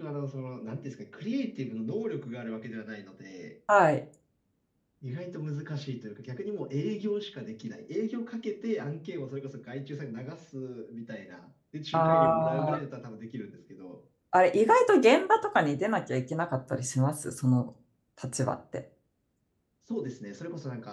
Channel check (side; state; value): both; identical; correlation 1.00